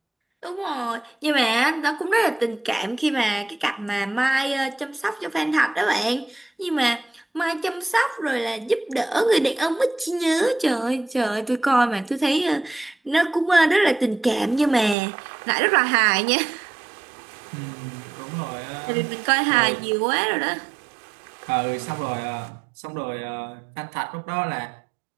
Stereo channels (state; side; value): drops out; left; at 15.0 s